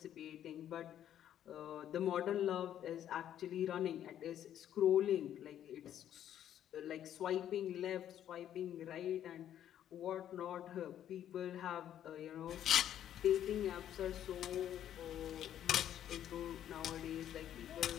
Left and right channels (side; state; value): right; quieter; 10.7 dB